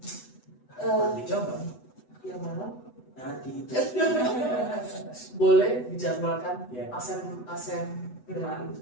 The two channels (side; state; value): right; late; 8.1 ms